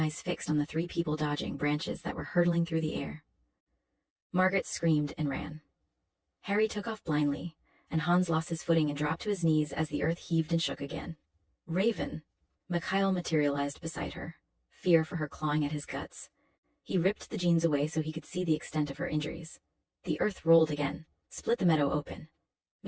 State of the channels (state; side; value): identical; both; correlation 1.00